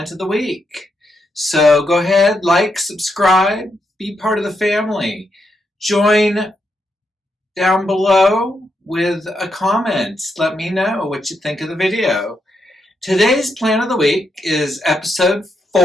of the Week. So go ahead, like, subscribe, be part of the family. Join down below with a comment. Let me know what you think of the video. Today's plant of the week is episode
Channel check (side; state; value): both; normal; correlation 0.81